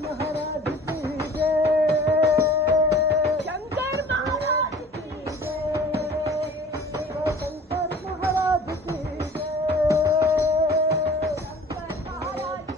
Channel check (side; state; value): both; normal; correlation 0.45